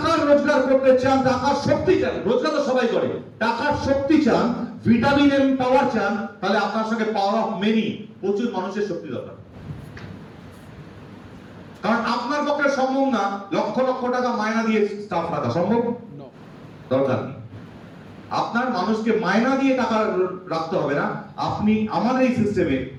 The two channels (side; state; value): both; identical; correlation 1.00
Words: রোজগার করতে চান, টাকার শক্তি চান, রোজগার তো সবাই করে, টাকার শক্তি চান, ভিটামিন এম পাওয়ার চান, তাহলে আপনার সঙ্গে পাওয়ার অফ মেনি, প্রচুর মানুষের শক্তি দরকার। কারণ আপনার পক্ষে সম্ভব না লক্ষ লক্ষ টাকা মায়না দিয়ে স্টাফ রাখা, সম্ভব দরকার নেই। আপনার মানুষকে মায়না দিয়ে টাকা রাখতে হবে না। আপনি আমাদের এই সিস্টেমে